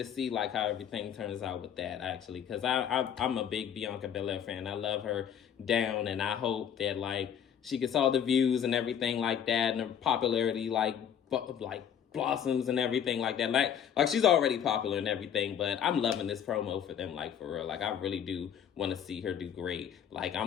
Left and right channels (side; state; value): right; quieter; 8.7 dB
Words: see like how everything turns out with that, actually, because I'm a big Bianca Belair fan. I love her down, and I hope that like she gets all the views and everything like that, and her popularity like blossoms and everything like that. Like she's already popular and everything, but I'm loving this promo for them, like for real. Like I really do want to see her do great. Like I'm